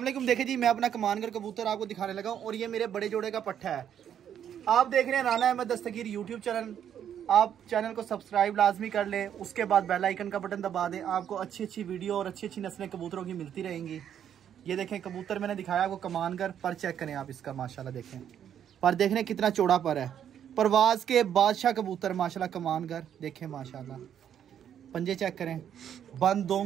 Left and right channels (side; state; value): left; quieter; 9.4 dB